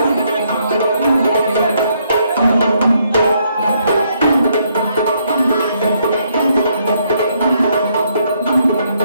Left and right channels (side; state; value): both; inverted; correlation -0.72